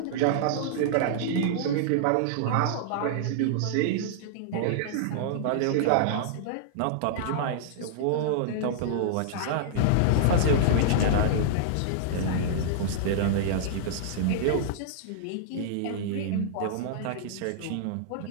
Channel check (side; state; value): both; different; correlation -0.01